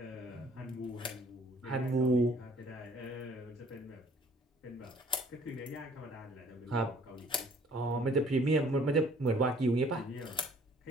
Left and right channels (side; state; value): both; normal; correlation 0.56